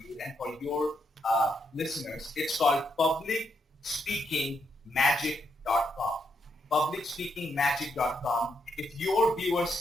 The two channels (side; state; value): both; normal; correlation 0.79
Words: and for your listeners. It's called publicspeakingmagic.com. publicspeakingmagic.com. If your